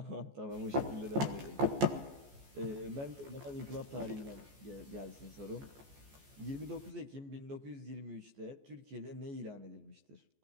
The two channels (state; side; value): late; left; 14 ms